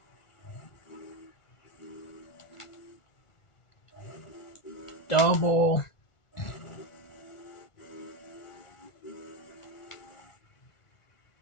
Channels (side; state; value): right; late; 1.4 ms